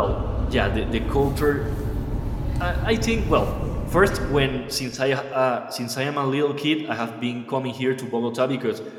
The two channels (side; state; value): both; identical; correlation 1.00